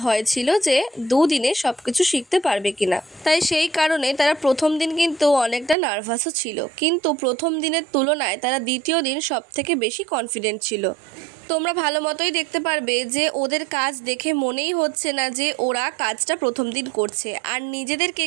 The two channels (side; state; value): left; drops out; at 5.8 s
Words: ভয় ছিল যে দুদিনে সব কিছু শিখতে পারবে কিনা। তাই সেই কারণে তারা প্রথম দিন কিন্তু অনেকটা নার্ভাসও ছিল, কিন্তু প্রথম দিনের তুলনায় তারা দ্বিতীয় দিন সব থেকে বেশি কনফিডেন্ট ছিল। তোমরা ভালো মতোই দেখতে পারবে যে ওদের কাজ দেখে মনেই হচ্ছে না যে ওরা কাজটা প্রথম দিন করছে, আর নিজেদের